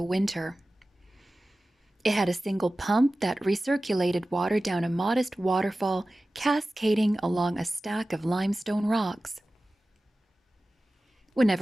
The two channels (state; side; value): normal; both; correlation 0.96